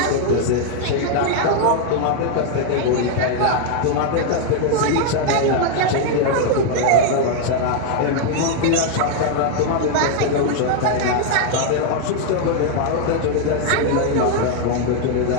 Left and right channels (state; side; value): different; both; correlation 0.00